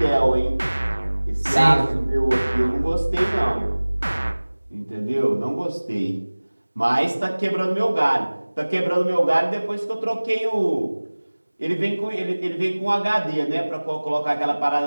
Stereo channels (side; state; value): both; inverted; correlation -1.00